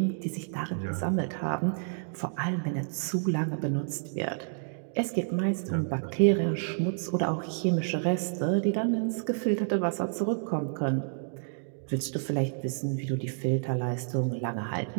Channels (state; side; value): silent; left; digital silence